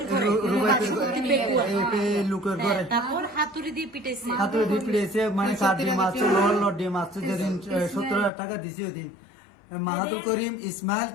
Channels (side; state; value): right; drops out; at 8.3 s